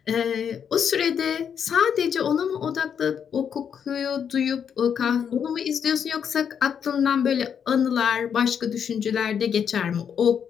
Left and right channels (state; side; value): quieter; right; 7.7 dB